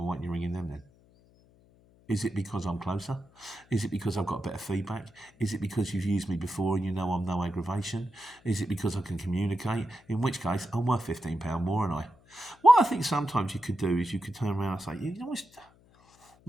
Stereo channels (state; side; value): noise; left; hum, 29 dB below the sound